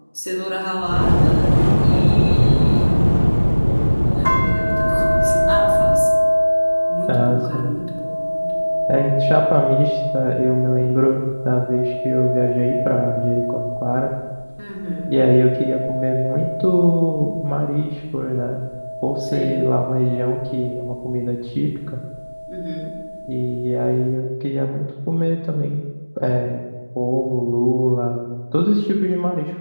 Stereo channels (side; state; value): both; inverted; correlation -1.00